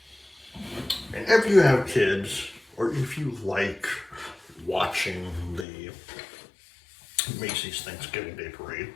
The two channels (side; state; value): right; drops out; at 5.7 s